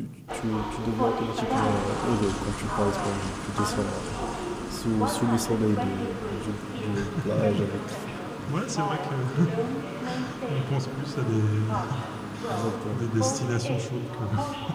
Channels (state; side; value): identical; both; correlation 1.00